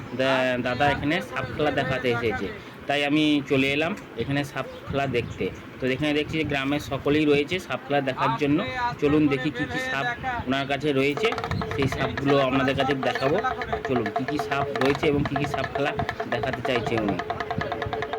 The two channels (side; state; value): both; identical; correlation 1.00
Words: দাদা এখানে সাপ খেলা দেখাতে এসেছে, তাই আমি চলে এলাম এখানে সাপ খেলা দেখতে। তো এখানে দেখছি যে গ্রামের সকলেই রয়েছে সাপ খেলা দেখার জন্য। চলুন দেখি কি কি সাপ ওনার কাছে রয়েছে, সেই সাপগুলো আপনাদের কাছে দেখাবো। চলুন কি কি সাপ রয়েছে এবং কি কি সাপ খেলা দেখাতে চাইছে উনি।